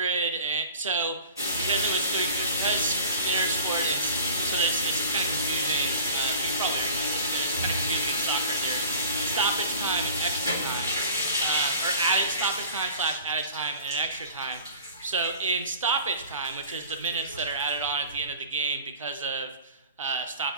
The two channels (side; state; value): both; inverted; correlation -0.42